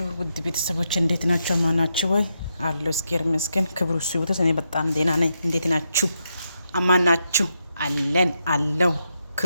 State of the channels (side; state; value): both; inverted; correlation -0.83